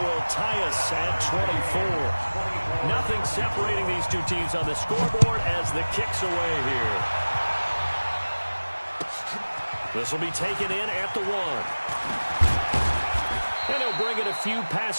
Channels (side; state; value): both; inverted; correlation -1.00